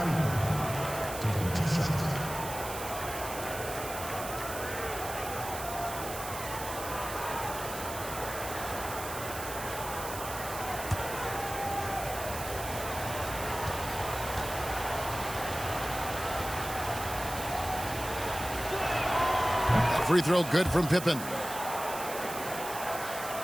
taking 2 shots. Free throw good from Pippen.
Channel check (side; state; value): right; noise; hiss, 9 dB below the sound